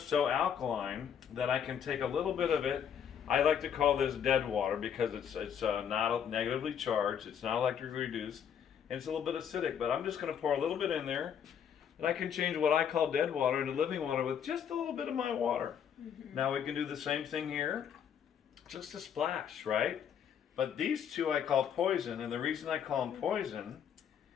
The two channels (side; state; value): right; quieter; 8.3 dB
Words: alkaline that I can take a little bit of it. I like to call this dead water because it's not negatively charged, it's not electrically reduced, and it's a little bit acidic. But I'm just going to pour a little bit in there, and I can change what I call dead water into living water with just a little bit of my water. Mm-hmm. Now we can do the same thing here, just a splash, right? But these two I call poison, and the reason I call them poison